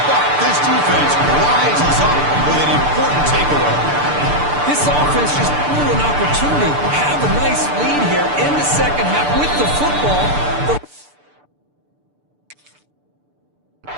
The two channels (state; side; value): late; left; 6.8 ms